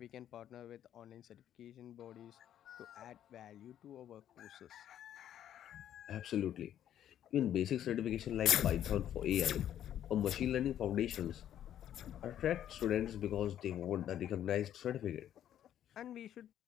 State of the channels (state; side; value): quieter; right; 10.8 dB